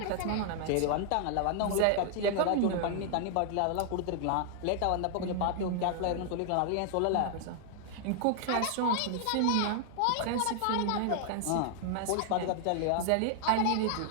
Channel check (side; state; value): both; different; correlation 0.00